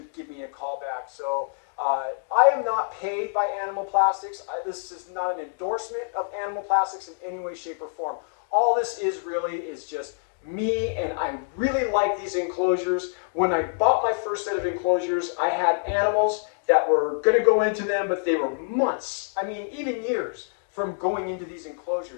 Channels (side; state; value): right; silent; digital silence